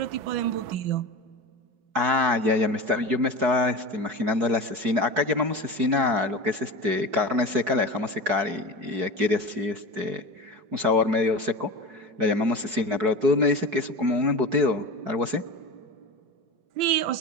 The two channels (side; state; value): left; late; 4.7 ms